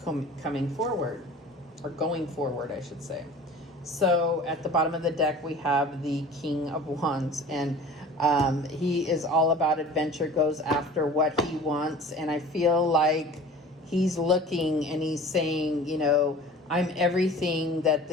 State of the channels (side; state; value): both; normal; correlation 0.43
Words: coming forward, or going forward, I should say. So at the bottom of the deck, we have the King of Wands, and he is all about adventure, goes after what he wants. And I feel like he's looking and he's saying, you know, I'm everything that